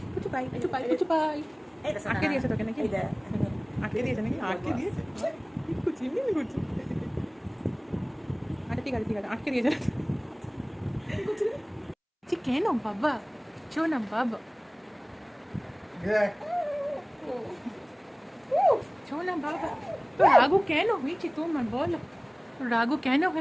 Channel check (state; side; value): identical; both; correlation 1.00